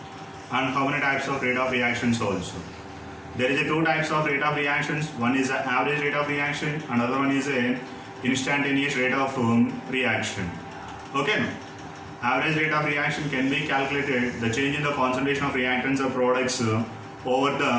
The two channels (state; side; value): identical; both; correlation 1.00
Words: and how many types of rate of reactions also. There is two types of rate of reactions. One is an average rate of reaction, another one is a instantaneous rate of reaction. Okay. Average rate of reaction can be calculated the change in the concentration of reactants or products over